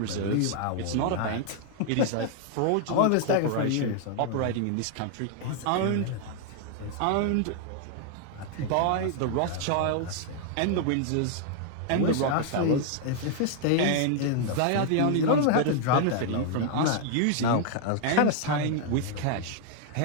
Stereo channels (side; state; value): both; different; correlation 0.00